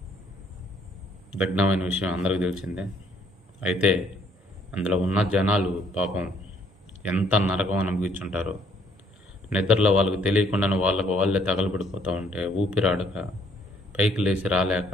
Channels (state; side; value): normal; both; correlation 0.64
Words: దగ్ధమైన విషయం అందరికీ తెలిసిందే. అయితే అందులో ఉన్న జనాలు పాపం ఎంత నరకం అనుభవించుంటారో. నిద్రలో వాళ్ళకు తెలియకుండానే వాళ్ళే తగలబడిపోతూ ఉంటే ఊపిరాడక పైకి లేచి